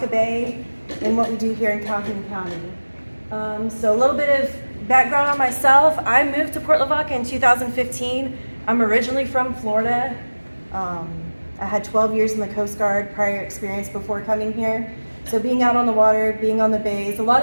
Bay and what we do here in Calhoun County. So a little bit of background on myself. I moved to Port Lavaca in 2015. I'm originally from Florida. I had 12 years in the Coast Guard prior experience before coming here. So being out on the water, being on the bays, a lot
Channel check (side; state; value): both; inverted; correlation -1.00